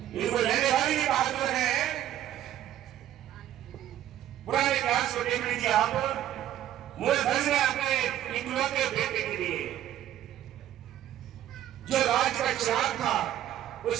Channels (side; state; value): left; quieter; 12.2 dB